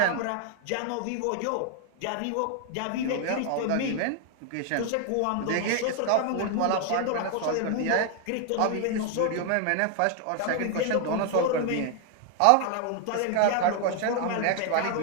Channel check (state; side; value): different; both; correlation 0.00